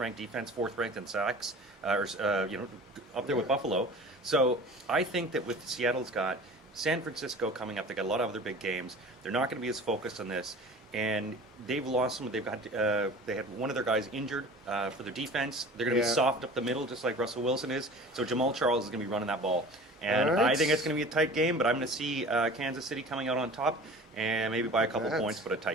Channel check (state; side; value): normal; both; correlation 0.41